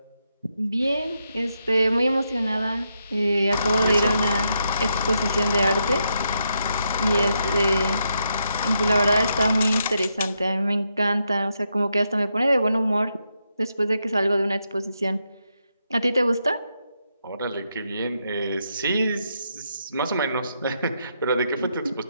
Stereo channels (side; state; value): both; inverted; correlation -0.81